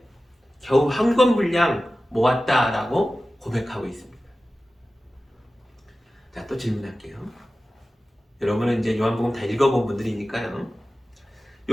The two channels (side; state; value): both; normal; correlation 0.95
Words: 겨우 한 권 분량 모았다라고 고백하고 있습니다. 자, 또 질문할게요. 여러분은 이제 요한복음 다 읽어본 분들이니까요.